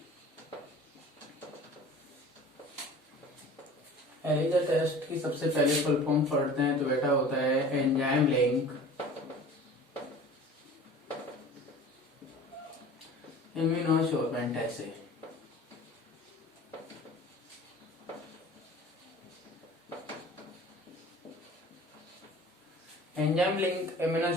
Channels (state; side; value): normal; both; correlation 0.43